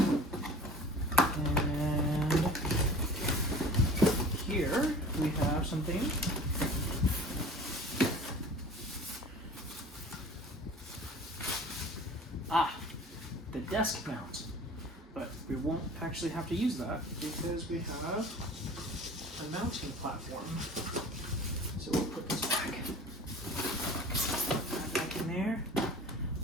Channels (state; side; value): normal; both; correlation 0.43